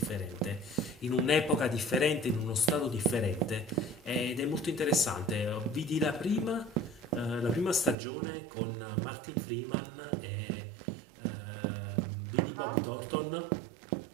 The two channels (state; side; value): drops out; left; at 8.0 s